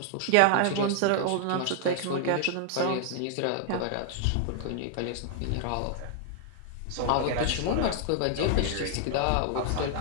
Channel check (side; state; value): both; different; correlation 0.00